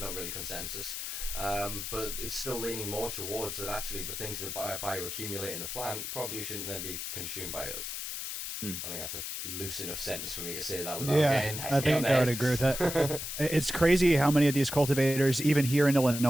really consensus, but it's still leaning more towards that actually the things that bioaccumulate in the plant probably shouldn't then be consumed by us. I think that's a loose enough sentence for me to say that without getting I think I would agree with that. It's crazy how many of these cultivators, even here in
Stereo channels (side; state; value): left; noise; hiss, 5 dB below the sound